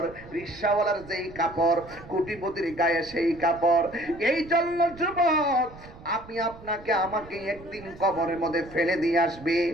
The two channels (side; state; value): right; noise; rumble, 19 dB below the sound